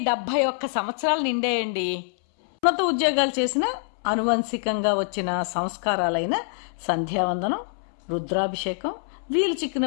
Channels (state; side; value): silent; right; 62 dB below the other